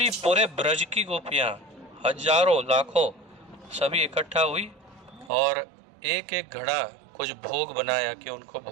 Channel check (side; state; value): left; drops out; at 5.3 s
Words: पूरे ब्रज की गोपियाँ, हजारों लाखों, सभी इकट्ठा हुई और एक एक घड़ा कुछ भोग बनाया कि उनको